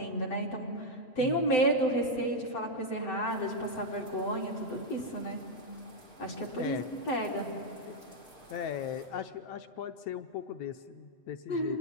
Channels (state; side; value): late; right; 7.9 ms